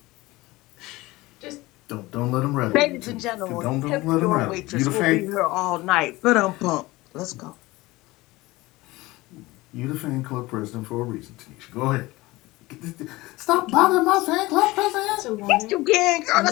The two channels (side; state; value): right; quieter; 20.3 dB